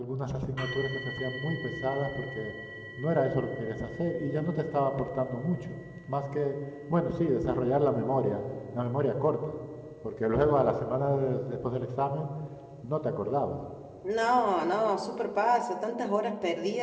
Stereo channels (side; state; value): both; identical; correlation 1.00